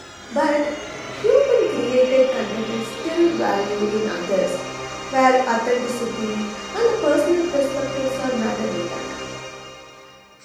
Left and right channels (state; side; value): identical; both; correlation 1.00